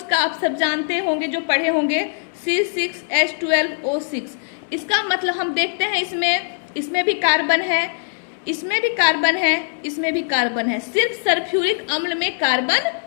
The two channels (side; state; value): right; silent; 65 dB below the other